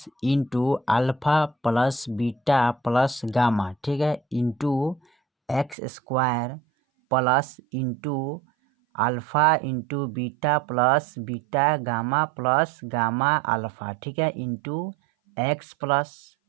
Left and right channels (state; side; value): drops out; left; at 5.8 s